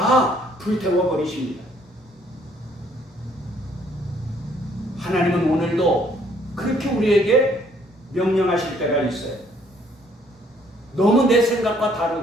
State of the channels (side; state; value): both; normal; correlation 0.64